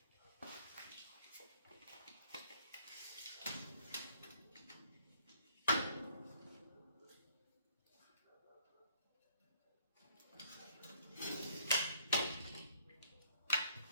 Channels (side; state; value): both; inverted; correlation -0.62